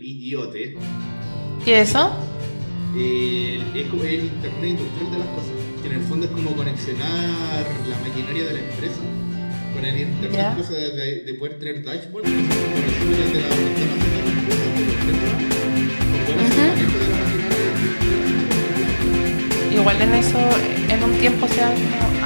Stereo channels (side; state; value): both; inverted; correlation -1.00